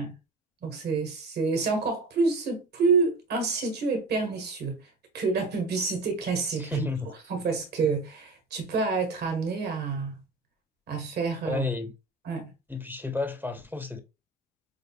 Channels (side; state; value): left; quieter; 3.3 dB